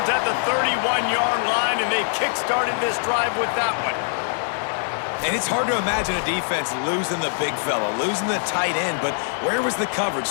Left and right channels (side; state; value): right; silent; digital silence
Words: at the 31-yard line, and they kick-started this drive with that one. And it's hard to imagine a defense losing the big fella, losing the tight end, but where was the coverage?